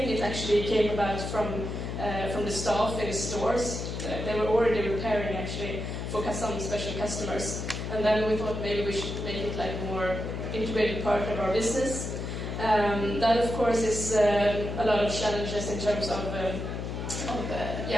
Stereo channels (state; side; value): noise; left; hum, 5 dB below the sound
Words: It actually came about from the staff in the stores. They were already repairing actually for some special customers. And then we thought maybe we should make it like more integrated part of our business. That of course is a lot of challenges in terms of